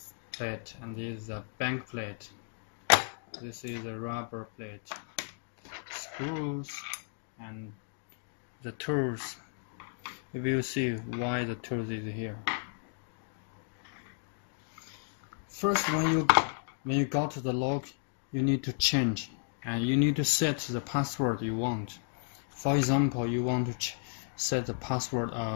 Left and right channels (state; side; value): silent; right; digital silence